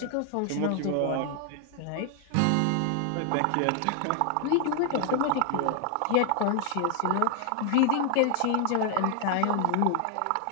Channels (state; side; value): different; both; correlation 0.00